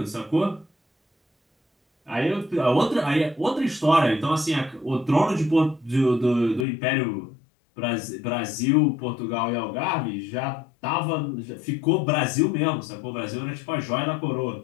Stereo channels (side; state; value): right; drops out; at 6.7 s